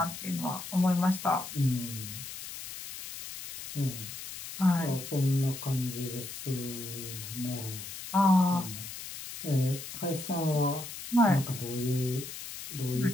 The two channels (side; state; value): left; noise; hiss, 10 dB below the sound